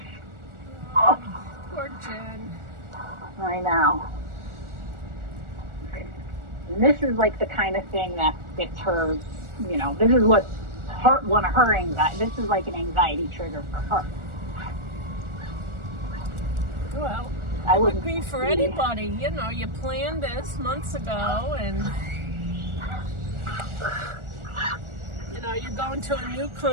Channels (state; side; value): late; left; 1.4 ms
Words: Jen. I know. And this is like the kind of thing that gets her, this is what's one of her anxiety. This is like an anxiety trigger for her. Well, I it would wouldn't be for anybody. You planned this months ago, and you're going to a new